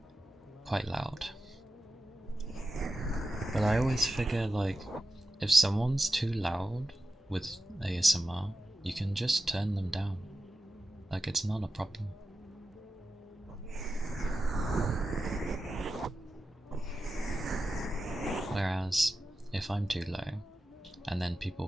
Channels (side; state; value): both; normal; correlation 0.91